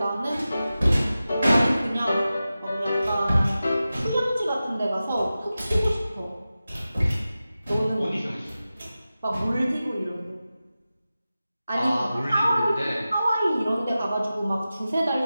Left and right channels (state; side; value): inverted; both; correlation -0.94